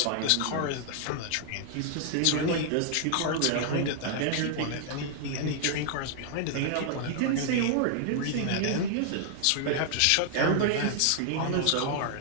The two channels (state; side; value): different; both; correlation 0.00